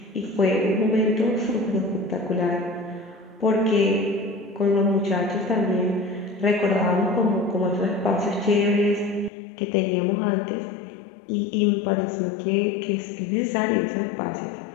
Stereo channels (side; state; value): right; drops out; at 9.3 s